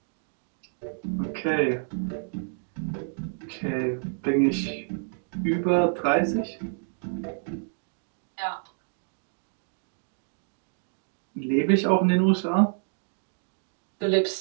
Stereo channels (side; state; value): left; silent; digital silence